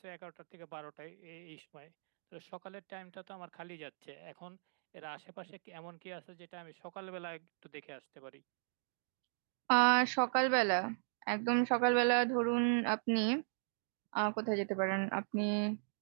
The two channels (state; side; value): silent; left; digital silence